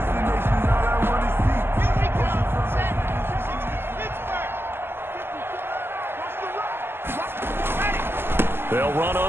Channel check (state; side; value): late; left; 0.11 ms